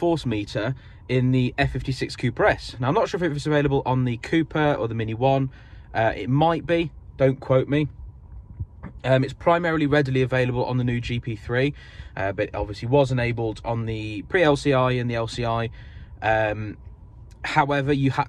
Meter in the F56 Cooper S. Now, I'm not sure if it's available on the Cooper or the Mini 1. It might be. Don't quote me. It's primarily readily available on the new GP3, but it obviously was enabled on the pre-LCI and the LCI. However, you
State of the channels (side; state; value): both; identical; correlation 1.00